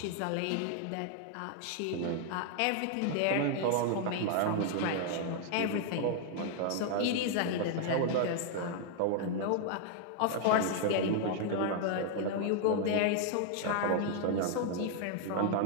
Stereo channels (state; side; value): different; both; correlation 0.00